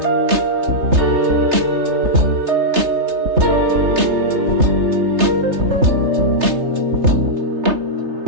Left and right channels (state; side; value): late; left; 3.3 ms